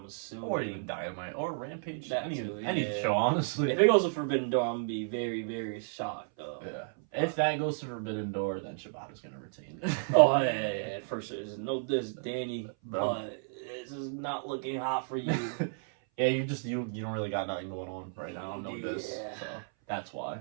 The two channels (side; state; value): left; silent; 56 dB below the other